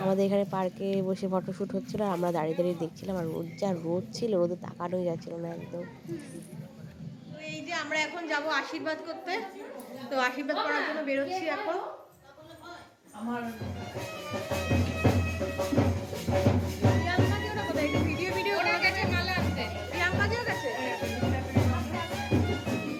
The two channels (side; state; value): both; identical; correlation 1.00